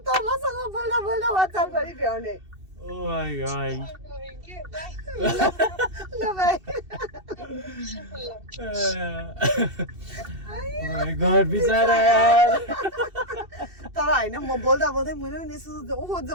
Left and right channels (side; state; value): left; late; 2.7 ms